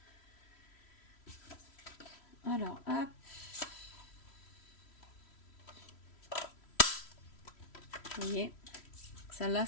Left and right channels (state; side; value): late; right; 3.1 ms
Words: Alors, hop. Vous voyez, Celle-là,